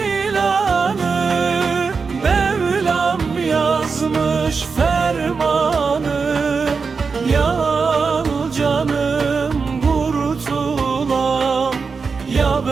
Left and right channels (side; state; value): left; quieter; 5.0 dB